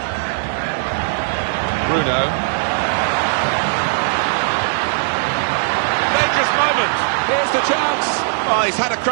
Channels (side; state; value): left; silent; digital silence